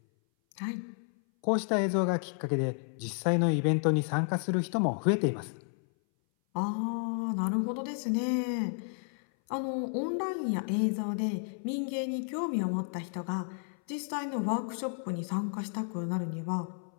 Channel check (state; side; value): silent; right; 57 dB below the other